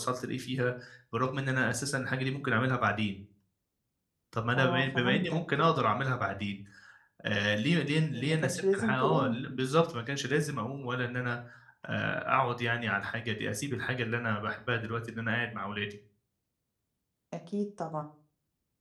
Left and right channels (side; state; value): both; identical; correlation 1.00